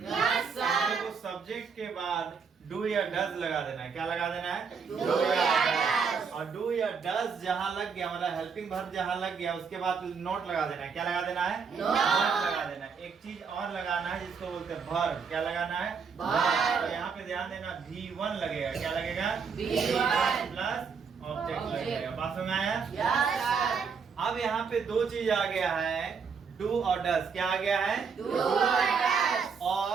does लगा देना है। क्या लगा देना है? डू या डज। और डू या डज जहां लग गया मतलब हेल्पिंग वर्ब जहां लग गया उसके बाद नोट लगा देना है। क्या लगा देना है? नोट लगा देना है। एक चीज और लगाना है जिसको बोलते हैं वर्ब। क्या लगाना है? वर्ब। तो यहाँ पे ध्यान देना V1 लगेगा। क्या लगेगा? V1 प्लस ऑब्जेक्ट लगेगा। बात समझ में आया? अब यहाँ पे दो चीज आ गया है, डू और डज। क्या आ गया है? डू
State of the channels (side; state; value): left; quieter; 5.8 dB